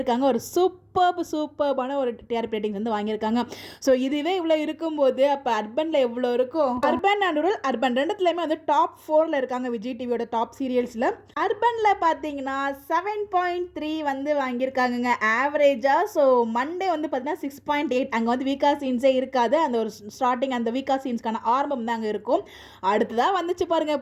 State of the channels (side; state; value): both; identical; correlation 1.00